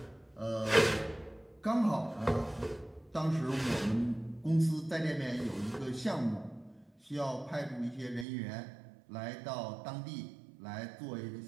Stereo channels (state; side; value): drops out; left; at 8.2 s